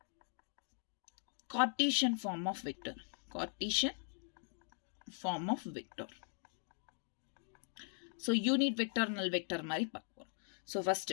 Cartesian form of vector. Cartesian form of vector. So unit vector, null vector மாதிரி பார்ப்போம். So first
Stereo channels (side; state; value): right; silent; 51 dB below the other